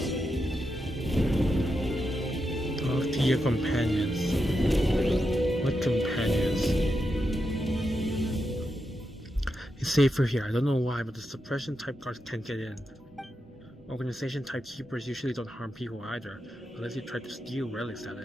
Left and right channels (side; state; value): both; normal; correlation 0.86